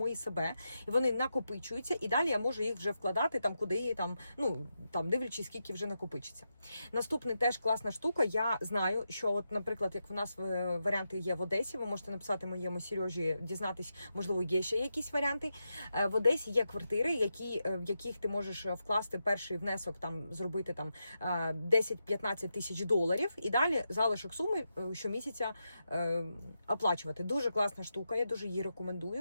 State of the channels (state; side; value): inverted; both; correlation -0.87